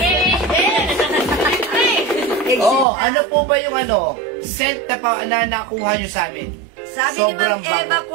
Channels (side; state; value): left; drops out; at 2.9 s